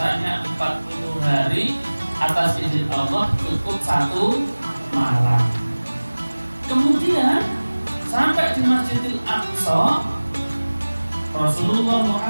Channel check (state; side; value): inverted; both; correlation -1.00